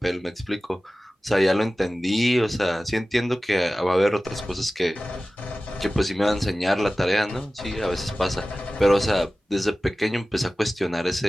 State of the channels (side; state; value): both; normal; correlation 0.96